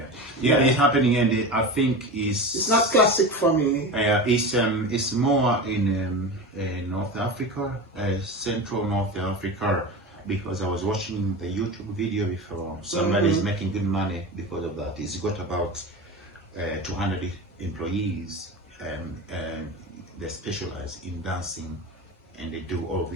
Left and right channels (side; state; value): both; normal; correlation 0.26